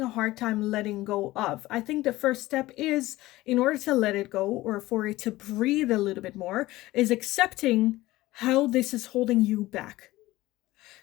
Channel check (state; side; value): quieter; right; 17.8 dB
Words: a hard time letting go of. I think the first step is, in order to let it go, or for it to breathe a little bit more, is accepting how this is holding you back.